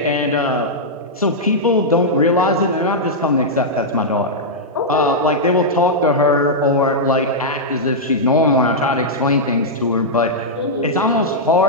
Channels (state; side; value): normal; both; correlation -0.07